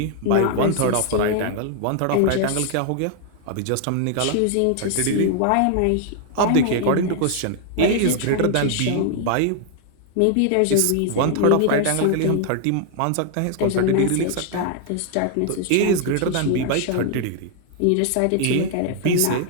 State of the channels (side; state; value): both; different; correlation 0.00